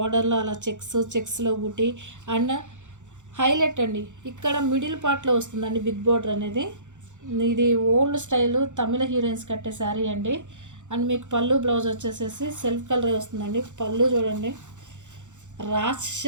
అలా చెక్స్లో బుటీ. అండ్ హైలైట్ అండి, ఇక్కడ మిడిల్ పార్ట్లో వస్తుందండి బిగ్ బోర్డర్ అనేది. ఇది ఓల్డ్ స్టైలు తమిళ హీరోయిన్స్ కట్టే శారీ అండి. అండ్ మీకు పళ్ళు బ్లౌజ్ వచ్చేసేసి సెల్ఫ్ కలర్ వస్తుందండి. పళ్ళు చూడండి,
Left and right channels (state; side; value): late; left; 0.85 ms